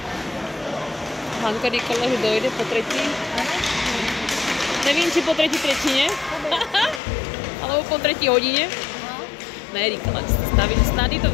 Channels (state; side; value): drops out; right; at 7.0 s